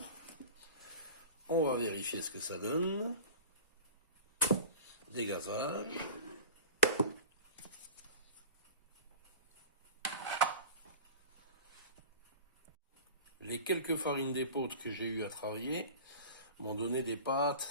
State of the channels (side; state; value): both; inverted; correlation -0.37